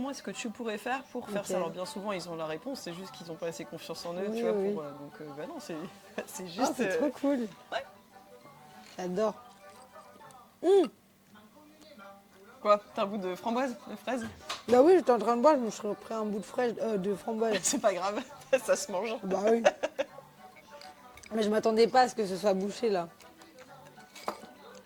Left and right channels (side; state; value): both; identical; correlation 1.00